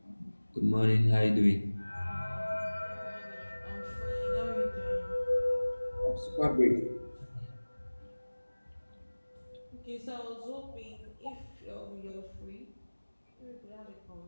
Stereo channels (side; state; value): both; inverted; correlation -1.00